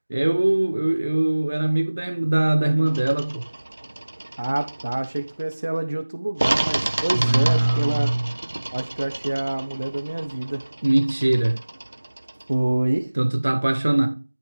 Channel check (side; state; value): both; inverted; correlation -1.00